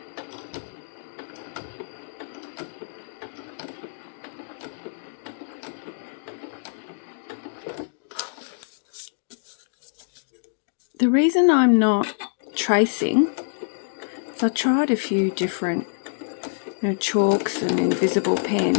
The reason I'm not tracing is I tried a few different, you know, chalks and invisible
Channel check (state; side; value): silent; right; digital silence